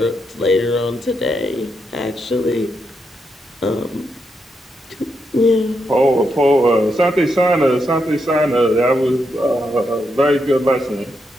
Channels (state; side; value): normal; both; correlation 0.82